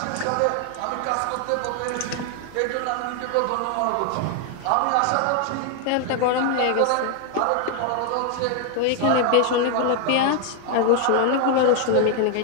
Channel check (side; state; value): both; different; correlation 0.00